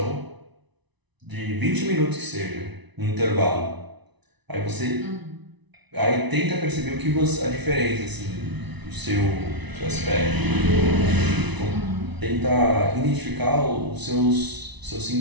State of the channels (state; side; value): late; left; 1.0 ms